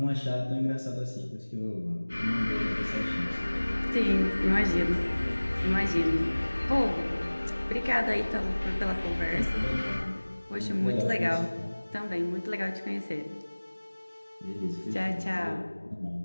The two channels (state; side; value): inverted; both; correlation -1.00